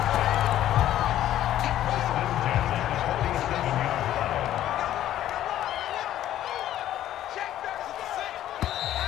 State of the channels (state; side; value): quieter; right; 12.5 dB